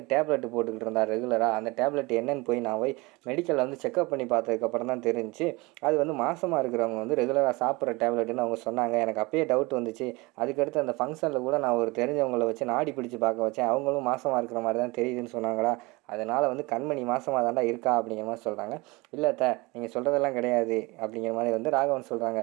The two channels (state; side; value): quieter; left; 24.1 dB